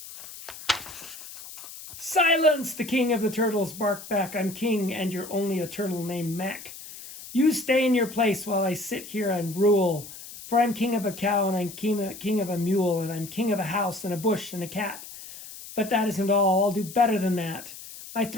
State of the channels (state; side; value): noise; left; hiss, 14 dB below the sound